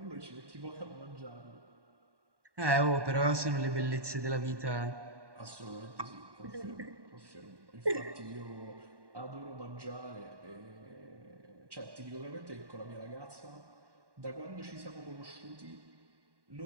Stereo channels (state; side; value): late; left; 1.1 ms